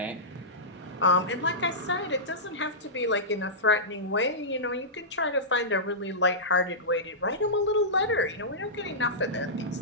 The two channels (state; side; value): normal; both; correlation -0.15